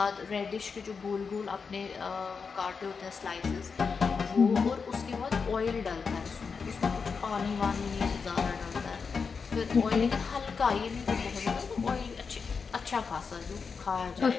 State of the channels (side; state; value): right; quieter; 5.4 dB